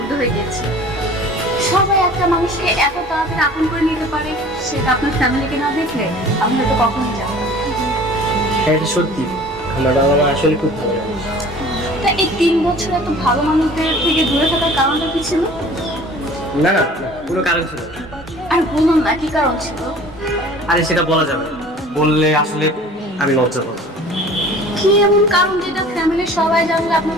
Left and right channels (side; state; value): both; normal; correlation 0.46